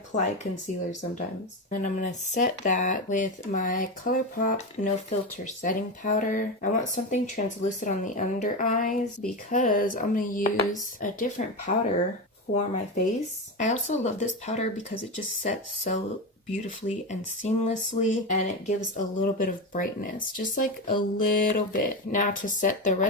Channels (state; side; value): normal; both; correlation 0.17